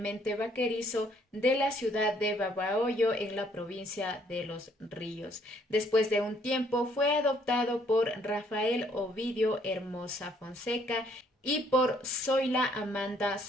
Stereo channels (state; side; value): normal; both; correlation 0.65